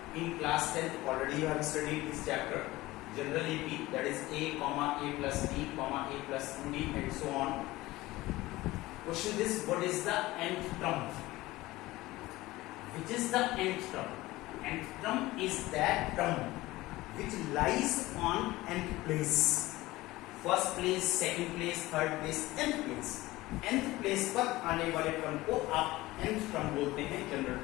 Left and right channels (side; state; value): right; quieter; 18.7 dB